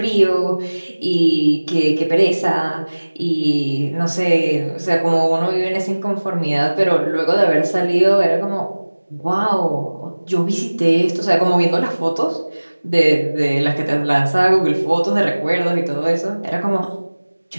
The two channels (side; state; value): both; inverted; correlation -1.00